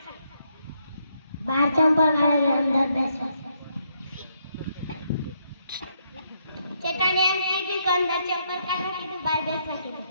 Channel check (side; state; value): both; inverted; correlation -0.75